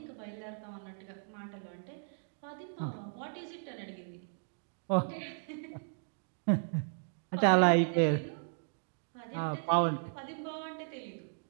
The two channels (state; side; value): silent; left; digital silence